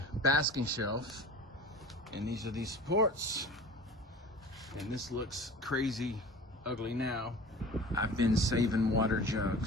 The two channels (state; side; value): normal; both; correlation 0.40